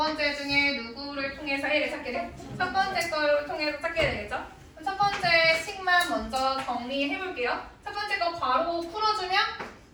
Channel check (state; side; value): identical; both; correlation 1.00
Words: 중에 누구를 통해서 해를 찾게 돼? 첫 번째 거를 통해서 찾게 되겠죠? 그럼 첫 번째 식만 먼저 정리해 볼게요. 첫 번째 거 괄호 풀어주면